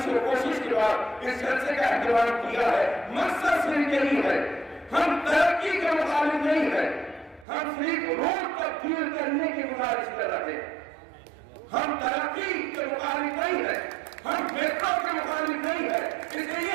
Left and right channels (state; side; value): drops out; left; at 7.5 s